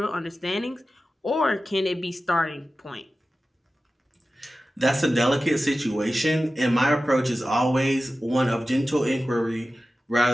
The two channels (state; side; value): normal; both; correlation 0.94